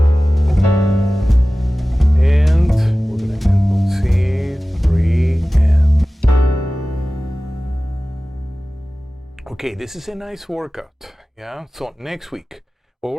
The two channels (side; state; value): both; normal; correlation 0.97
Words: Okay, this is a nice workout, yeah? So next week, what